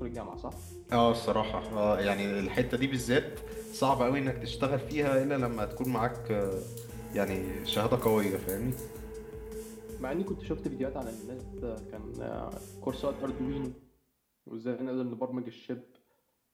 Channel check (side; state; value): both; identical; correlation 1.00